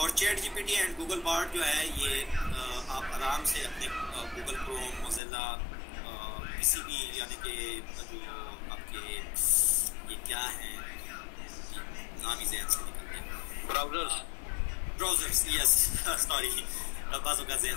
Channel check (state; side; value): drops out; right; at 5.2 s